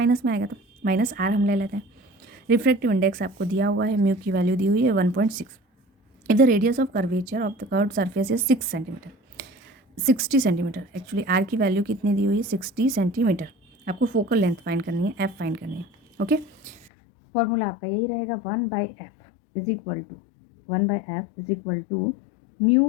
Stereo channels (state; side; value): drops out; right; at 16.9 s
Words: में आएगा, तो माइनस R हम ले लेते हैं। रिफ्रैक्टिव इंडेक्स आपको दिया हुआ है, म्यू की वैल्यू दी हुई है 1.6। If the radius of curvature of the curved surface is 60 centimetre. Actually R की वैल्यू कितनी दी हुई है, 60 सेंटीमीटर। आपको फोकल लेंथ फाइंड करनी है, F फाइंड करनी है। ओके, फॉर्मूला आपका यही रहेगा 1/f is equal to